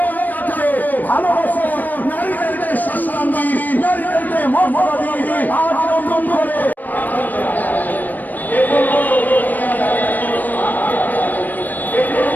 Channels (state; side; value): late; right; 0.086 ms